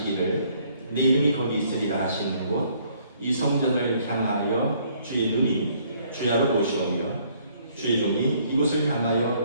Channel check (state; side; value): inverted; both; correlation -0.64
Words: 내 이름이 거기 있으리라 하시는 곳 이 성전을 향하여 주의 눈이 주야로 보시오며 주의 종이 이곳을